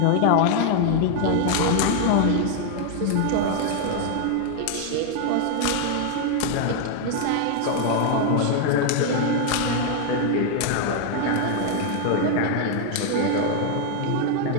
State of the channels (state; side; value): different; both; correlation 0.00